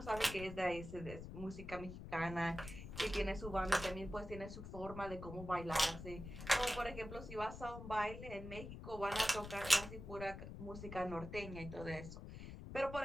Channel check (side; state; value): left; noise; rumble, 10 dB below the sound